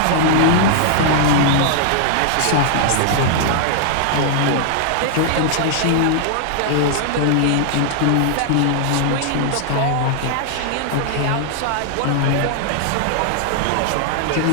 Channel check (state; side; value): different; both; correlation 0.00